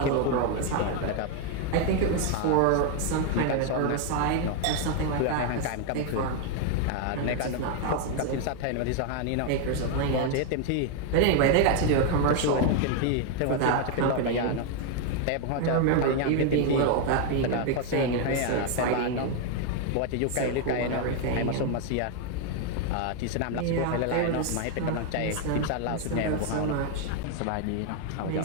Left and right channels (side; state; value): both; different; correlation 0.01